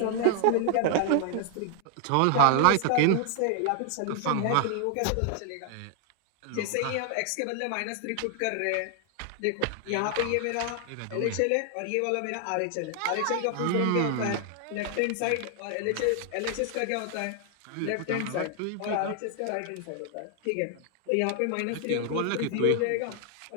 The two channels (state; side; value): different; both; correlation 0.00